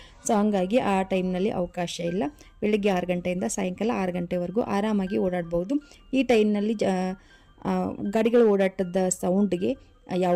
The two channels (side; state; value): both; identical; correlation 1.00